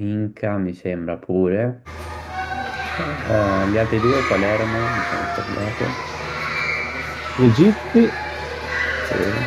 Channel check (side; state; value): both; identical; correlation 1.00